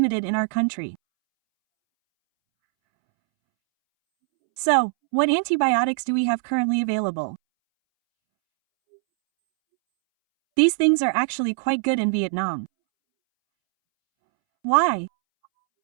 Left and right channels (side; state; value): left; silent; 64 dB below the other